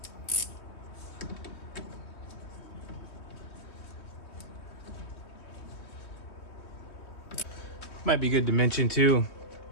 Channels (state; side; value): late; right; 3.2 ms